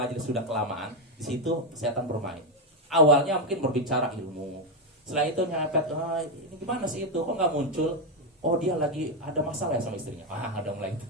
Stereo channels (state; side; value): normal; both; correlation 0.06